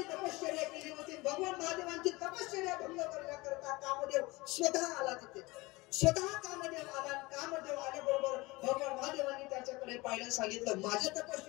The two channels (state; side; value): quieter; right; 22.5 dB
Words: तपश्चर्या केली होती. भगवान महादेवांची तपश्चर्या भंग करण्याकरता कामदेव स्वतः आला तिथे, स्वतः कामदेव आला. कामदेव आल्याबरोबर भगवान महादेवांनी त्याच्याकडे पाहिलं, सांगितलं माझ्या